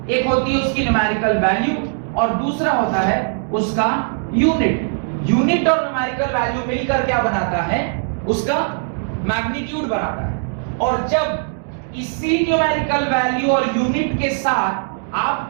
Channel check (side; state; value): left; silent; digital silence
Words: एक होती है उसकी न्यूमेरिकल वैल्यू और दूसरा होता है उसका यूनिट। यूनिट और न्यूमेरिकल वैल्यू मिलकर क्या बनाता है, उसका मैग्नीट्यूड बनाता है। और जब इसी न्यूमेरिकल वैल्यू और यूनिट के साथ आप